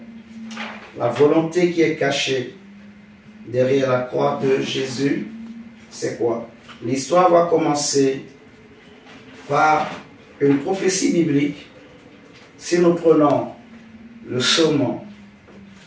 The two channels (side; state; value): both; identical; correlation 1.00